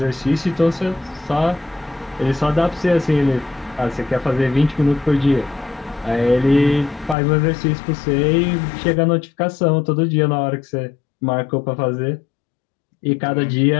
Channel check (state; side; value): drops out; right; at 7.2 s